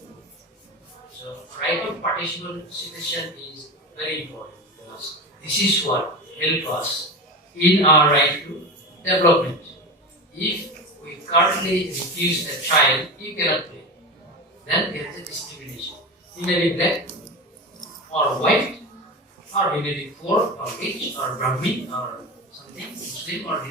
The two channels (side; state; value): both; normal; correlation 0.25